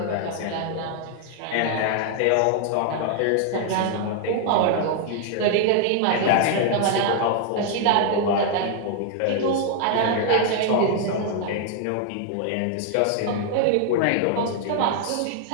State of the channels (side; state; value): both; different; correlation 0.00